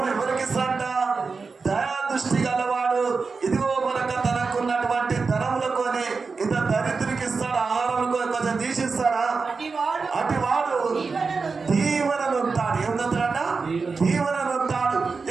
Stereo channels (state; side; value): quieter; left; 4.6 dB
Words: ఇస్తాడంట? దయా దృష్టి గలవాడు ఇదిగో మనక తనకున్నటువంటి ధనములకొని ఇంత దరిద్రునికి ఇస్తాడు. ఆహారంలో కొంచెం తీసిస్తాడా? అటు వాడు దీవెనలు ఉంటాడు. ఏమంటాడంట? దీవెనలు ఉంటాడు.